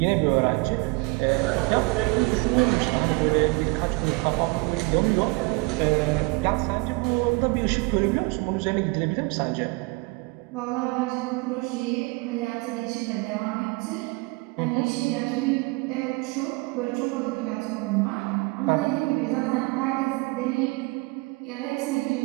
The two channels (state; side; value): quieter; left; 26.4 dB